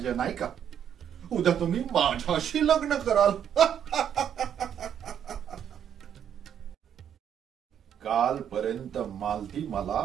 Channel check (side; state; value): left; quieter; 9.0 dB